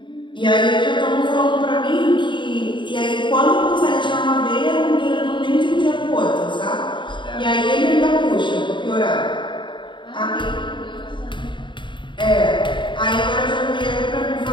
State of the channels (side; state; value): right; late; 0.23 ms